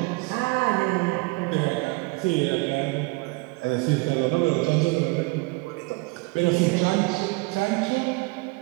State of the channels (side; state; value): left; quieter; 25.8 dB